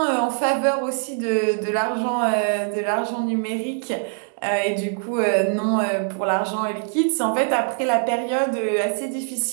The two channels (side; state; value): left; silent; digital silence